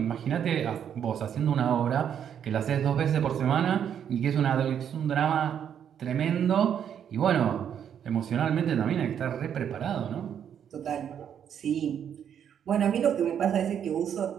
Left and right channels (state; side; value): quieter; left; 8.8 dB